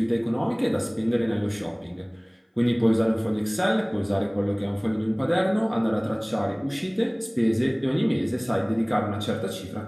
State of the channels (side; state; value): both; identical; correlation 1.00